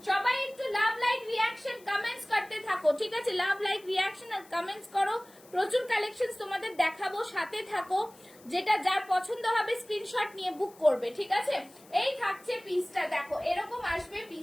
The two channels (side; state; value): left; noise; hiss, 25 dB below the sound